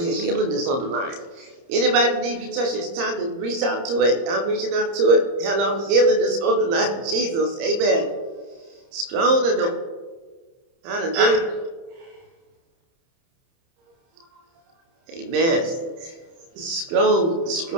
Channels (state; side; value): late; left; 30 ms